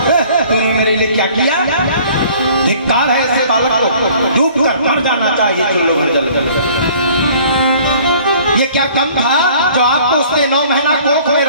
है, तूने मेरे लिए क्या किया? धिक्कार है ऐसे बालक को, डूब कर मर जाना चाहिए। चलो जल जल। ये क्या कम था जो आपको उसने 9 महीना कोख में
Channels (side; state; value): both; inverted; correlation -0.52